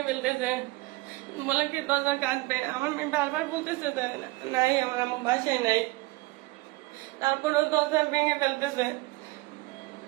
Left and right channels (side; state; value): left; quieter; 22.1 dB